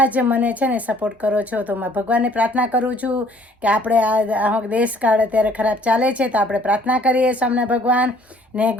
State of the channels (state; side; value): normal; both; correlation 0.58